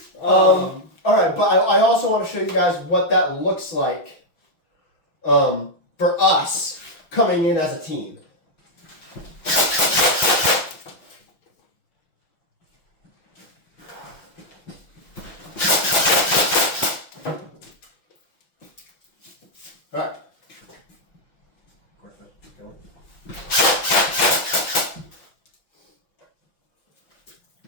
All right, but I also want to show you guys what that looks like for us coming in as a team. All right.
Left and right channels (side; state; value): right; late; 6.0 ms